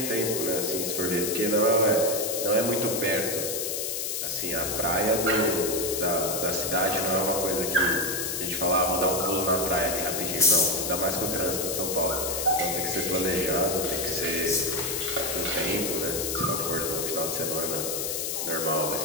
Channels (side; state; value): left; noise; hiss, 2 dB below the sound